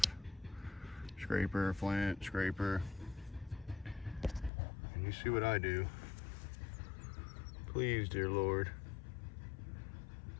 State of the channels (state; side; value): drops out; right; at 4.5 s